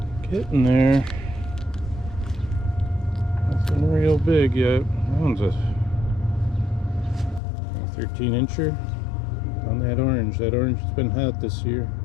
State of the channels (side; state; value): right; drops out; at 7.4 s